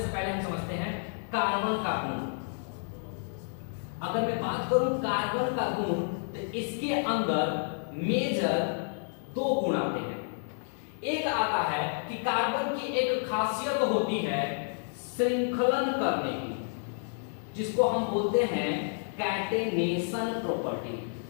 पहले हम समझते हैं कार्बन का गुण। अगर मैं बात करूं कार्बन का गुण तो इसके अंदर मेजर दो गुण आते हैं। एक आता है कि कार्बन की एक खासियत होती है श्रृंखलन करने की, जिसको हम बोलते हैं कैटेनेशन प्रॉपर्टी।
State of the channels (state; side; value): silent; right; digital silence